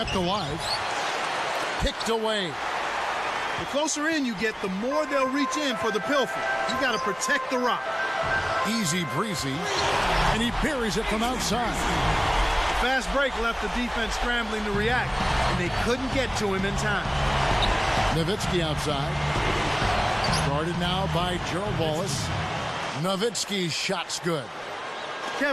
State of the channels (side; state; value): both; identical; correlation 1.00